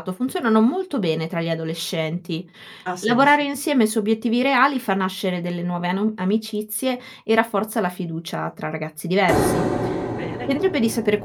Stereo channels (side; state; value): both; identical; correlation 1.00